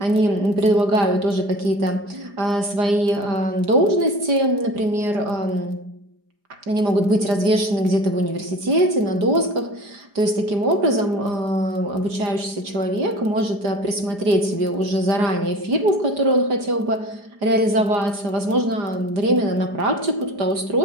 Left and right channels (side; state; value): left; late; 4.9 ms